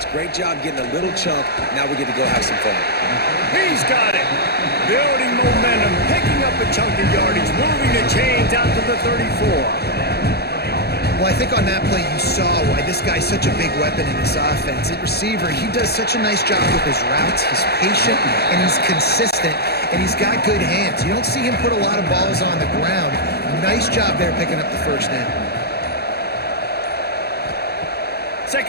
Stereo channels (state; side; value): late; right; 0.47 ms